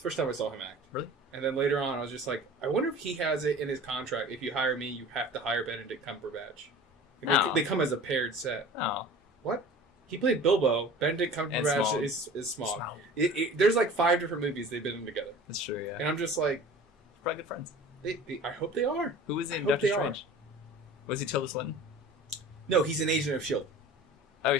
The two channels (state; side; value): normal; both; correlation 0.41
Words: first time I saw him act. Really? And then later on, I was just like, I wonder if he has it in his contract. If you hire me, you have to hire Benedict Cumberbatch. Like, they come as a paired set. Oh. What? He played Bilbo. Benedict Cumberbatch is Smaug. There's like 5 different movies they've been in together. That's true, yeah. And I'm just like... Probably good friends. I hope they are. Who was in Doctor Strange? Was he Tilda Swinton? No, he's an agent of S.H.I.E.L.D. Oh, are you